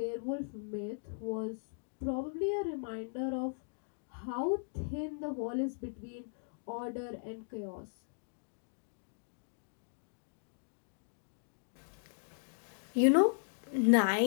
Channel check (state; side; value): silent; right; digital silence